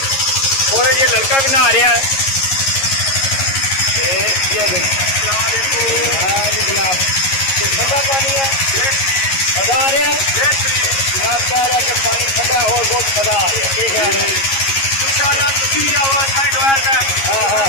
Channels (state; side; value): late; right; 11 ms